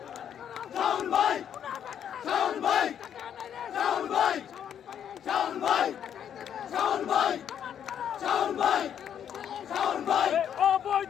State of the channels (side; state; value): right; quieter; 9.1 dB